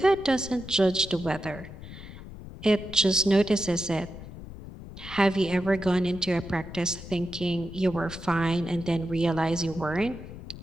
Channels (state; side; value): noise; left; rumble, 13 dB below the sound